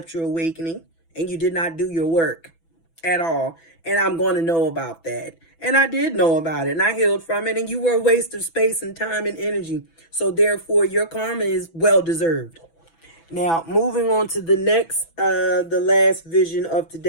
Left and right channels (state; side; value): late; right; 6.0 ms